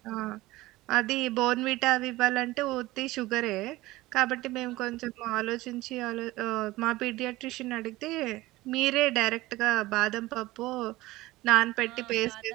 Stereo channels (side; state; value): left; quieter; 18.7 dB